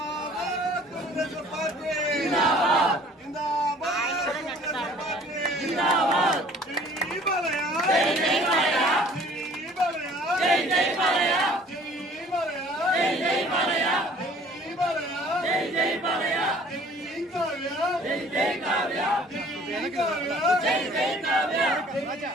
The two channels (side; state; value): both; normal; correlation 0.53